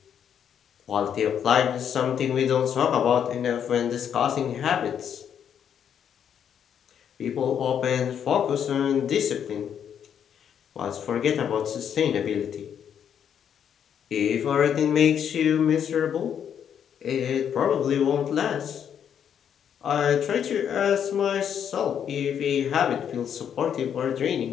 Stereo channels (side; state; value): right; quieter; 8.5 dB